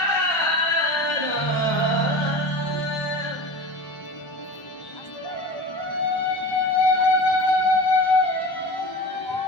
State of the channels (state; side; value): late; right; 1.1 ms